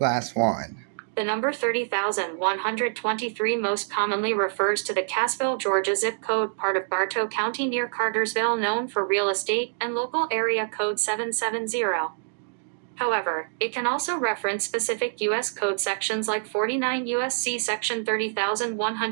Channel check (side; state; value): left; silent; digital silence